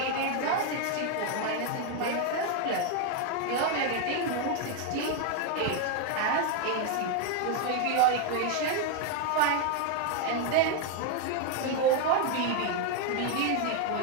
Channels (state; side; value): different; both; correlation 0.01